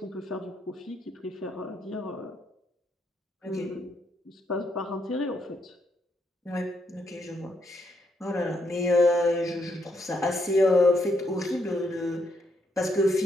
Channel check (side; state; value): both; normal; correlation 0.77